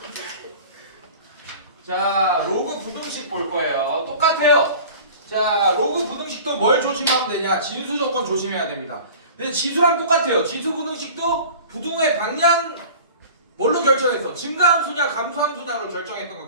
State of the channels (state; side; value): inverted; both; correlation -0.41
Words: 자, 로그 부등식 볼 거예요. 똑같아요. 자, 로그 부등식도 뭘 조심하면 되냐? 진수 조건 조심해야 됩니다. 근데 지수랑 똑같아요. 지수 부등식도 부등의 방향 뭘로 결정했어? 증가함수냐 감소함수냐로 결정했던 거